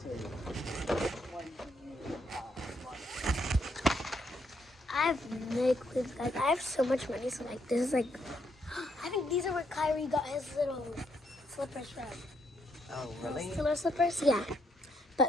to- which one do you want? I have no clue, guys. I have so much money, so like, this is like, I think these are where Kyrie got his little slippers from. Oh, really? Killer slippers, yeah.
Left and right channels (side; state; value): both; normal; correlation 0.75